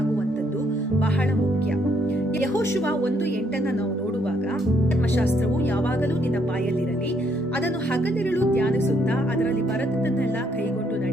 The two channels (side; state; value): both; normal; correlation 0.71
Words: ಬಹಳ ಮುಖ್ಯ. ಯೆಹೋಶುವ 1:8 ನಾವು ನೋಡುವಾಗ, ಧರ್ಮಶಾಸ್ತ್ರವು ಯಾವಾಗಲೂ ನಿನ್ನ ಬಾಯಲ್ಲಿರಲಿ, ಅದನ್ನು ಹಗಲಿರುಳು ಧ್ಯಾನಿಸುತ್ತಾ ಅದರಲ್ಲಿ ಬರೆದದ್ದನ್ನೆಲ್ಲ ಕೈಗೊಂಡು